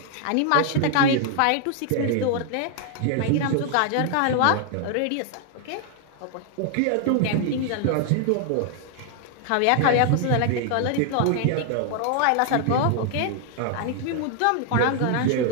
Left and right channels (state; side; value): different; both; correlation 0.00